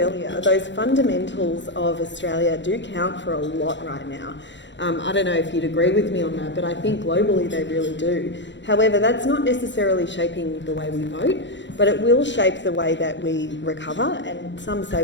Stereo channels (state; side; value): late; right; 0.53 ms